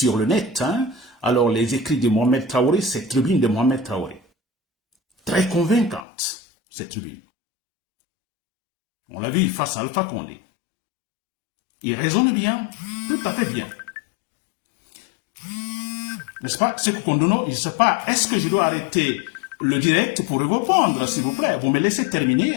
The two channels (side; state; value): right; drops out; at 6.1 s